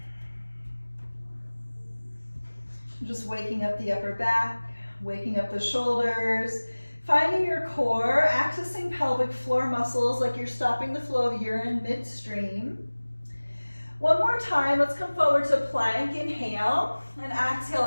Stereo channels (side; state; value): both; inverted; correlation -1.00